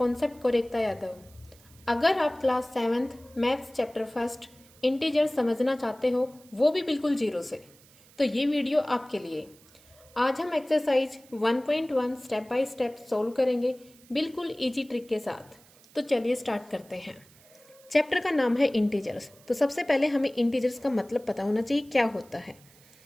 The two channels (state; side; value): noise; right; hiss, 26 dB below the sound